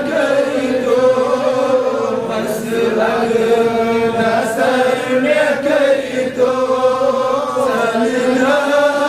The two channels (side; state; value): both; identical; correlation 1.00